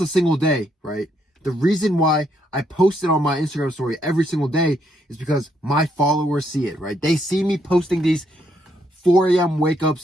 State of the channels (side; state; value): both; normal; correlation 0.74